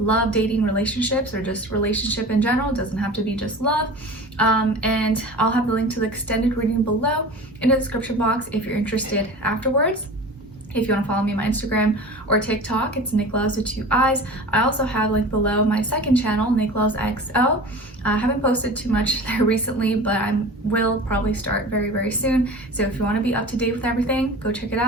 dating, relationships, or just relationship in general. It doesn't have to be just love. And I'll have the link to the extended reading below in the description box if you're interested afterwards. If you want to follow me on my Instagram or TikTok, it's Nicloves with 2 eyes. I also have linked below my second channel, Nicloves XO. I haven't posted too much there recently, but I will probably start very, very soon. So if you want to be up to date with everything, go check it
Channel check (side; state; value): both; normal; correlation 0.36